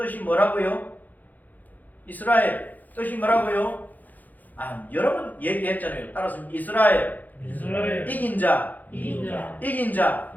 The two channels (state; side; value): late; right; 0.082 ms